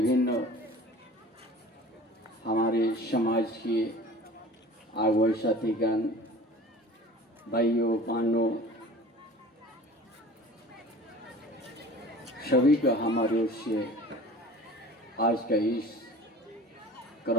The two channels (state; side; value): normal; both; correlation 0.43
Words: हमारे समाज के आगुए साथीगण भाइयों बहनों सभी का हमारे ओर से आज का इस